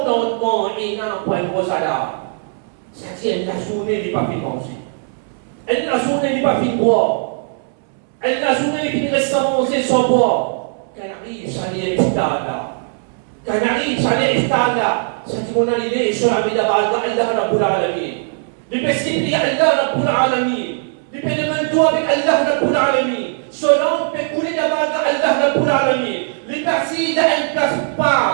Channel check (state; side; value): silent; left; 67 dB below the other